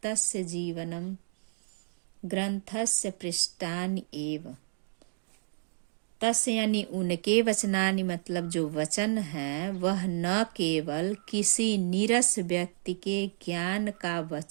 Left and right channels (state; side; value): silent; left; digital silence